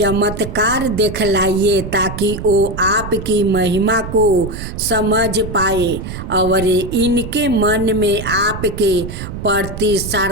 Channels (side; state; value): right; noise; rumble, 8 dB below the sound